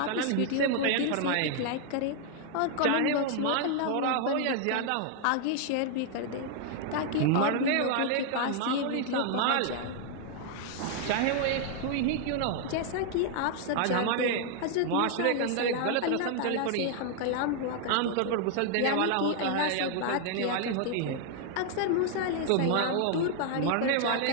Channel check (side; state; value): both; different; correlation 0.00